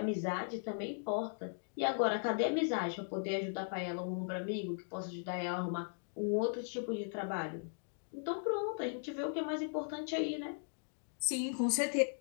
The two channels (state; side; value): silent; right; digital silence